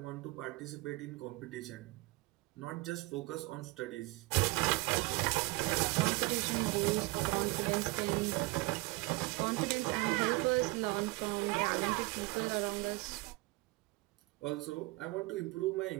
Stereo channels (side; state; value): left; quieter; 23.9 dB